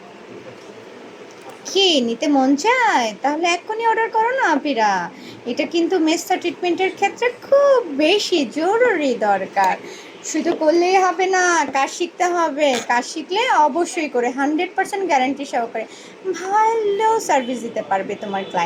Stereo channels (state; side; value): identical; both; correlation 1.00